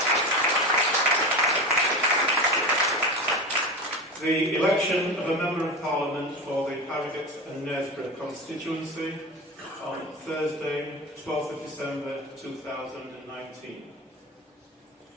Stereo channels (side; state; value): both; normal; correlation 0.25